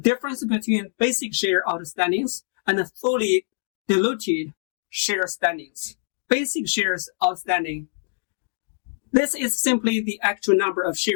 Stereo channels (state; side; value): silent; right; digital silence